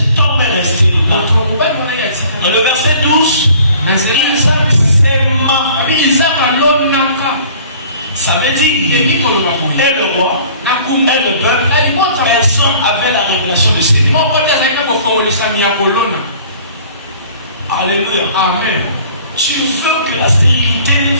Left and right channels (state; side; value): inverted; both; correlation -0.51